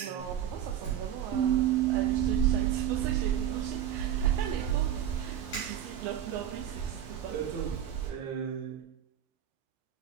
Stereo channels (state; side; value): quieter; left; 10.2 dB